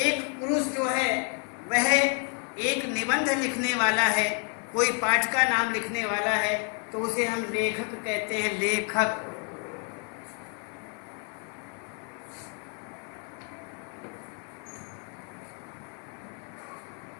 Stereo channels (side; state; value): right; quieter; 38.4 dB